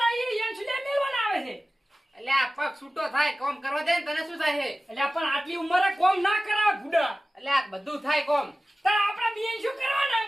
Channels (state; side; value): normal; both; correlation 0.97